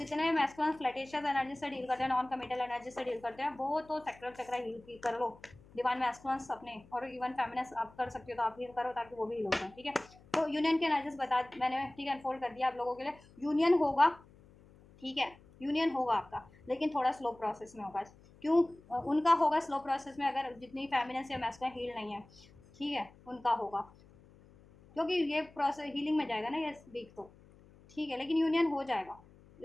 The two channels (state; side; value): noise; left; hum, 25 dB below the sound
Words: मैस्कुलिन फ्लैटेशियस एनर्जी से डील करते हैं, नॉन कमिटल एनर्जी से डील करते हैं, वो तो सैक्रल चक्र हील की कर लो। डिवाइन मैस्कुलिन्स अपने और इवन फेमिनिन आप कर सकते हो तो आप हील करो ताकि वो भी हील हो जाए, ठीक है। तो यूनियन के एनर्जीज बता मैंने, ठीक है, अनफोल्ड कर दिया आप लोगों के लिए। यूनियन होगा, ठीक है, यूनियन होगा आपका, लेकिन थोड़ा स्लो प्रोसेस में होगा। क्यों? उनका होगा स्लो प्रोसेस में अगर जितनी फेमिनिन या मैस्कुलिन हील नहीं है, ठीक है, उनका होगा, क्योंकि ये प्रोसेस हीलिंग में जाएगा ना ये वीक तो, ठीक है। लेकिन यूनियन हो जाएगा